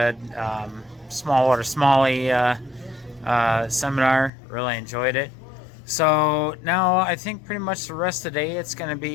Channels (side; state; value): right; drops out; at 4.3 s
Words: smallwater smallie seminar. Really enjoyed it. So now I think pretty much the rest of the day it's going to